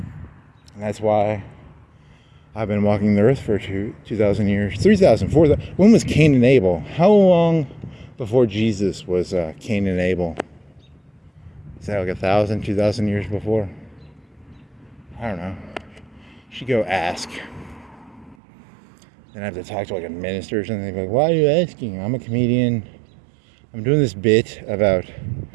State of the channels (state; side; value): drops out; left; at 18.4 s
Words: And that's why I've been walking the earth for 2,000 years, 3,000, 4,000. When was Kane and Abel? How long before Jesus was Kane and Abel? Is that like 1,000, 2,000 years before? I don't know. Should go ask. Then I have to talk to like a minister or something. They'd be like, why are you asking? I'm a comedian. I'm doing this bit about